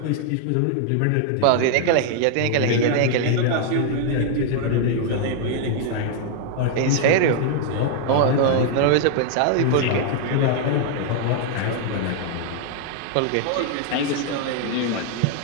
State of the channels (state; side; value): different; both; correlation 0.00